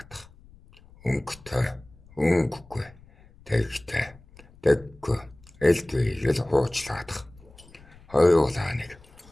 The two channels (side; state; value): left; noise; rumble, 24 dB below the sound